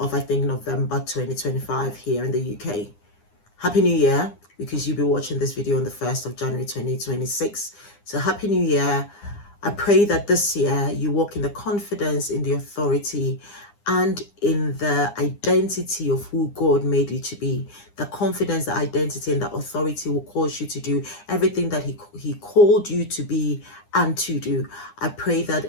I think, November 2025 here in the UK. Happy New Year, because you'll be watching this video on the 1st of January 2026. So Happy New Year. I pray that this year you walk in the confidence, in the authority, and in the identity of who God made you to be. The confidence, the identity, and the authority will cause you to do everything that He called you to be and to do. I pray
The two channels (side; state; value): right; late; 9.8 ms